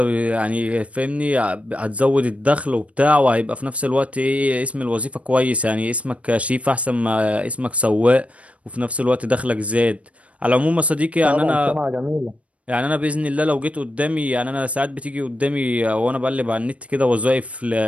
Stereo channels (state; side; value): late; left; 0.064 ms